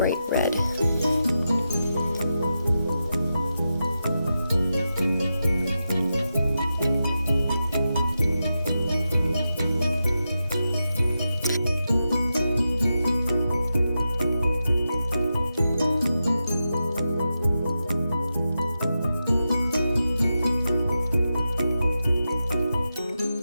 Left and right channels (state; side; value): inverted; both; correlation -0.90